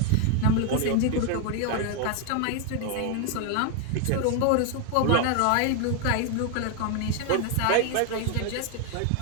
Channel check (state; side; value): different; both; correlation 0.00